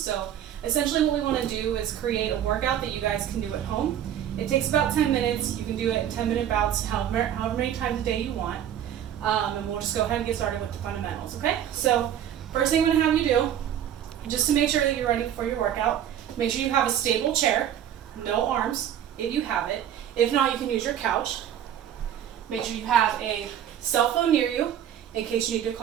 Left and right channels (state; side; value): quieter; left; 10.2 dB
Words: so essentially what we want to do is create a workout that you guys can do at home. It takes about 10 minutes. You can do it in 10-minute bouts, however many times a day you want. And we'll just go ahead and get started with the fundamentals, okay? So first thing I'm going to have you do, just to make sure that you're ready for your workout, make sure you have a stable chair, no arms, if you have it. If not, you can use your couch. Make sure you have a cell phone near you in case you need to